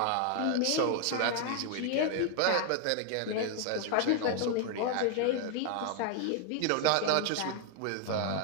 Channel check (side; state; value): both; different; correlation 0.00